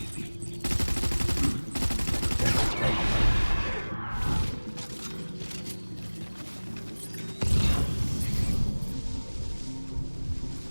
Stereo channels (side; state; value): both; inverted; correlation -1.00